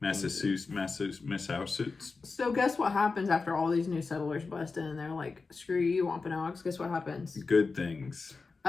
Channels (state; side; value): quieter; right; 4.3 dB